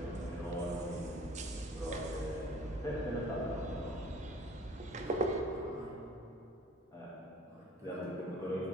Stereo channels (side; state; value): both; normal; correlation 0.50